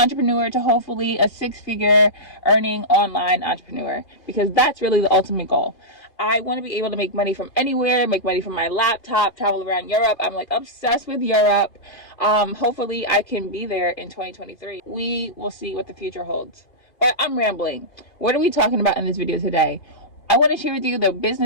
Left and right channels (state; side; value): late; right; 2.5 ms